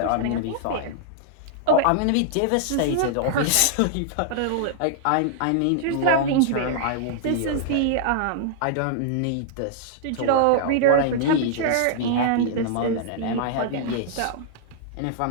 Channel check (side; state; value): both; different; correlation -0.01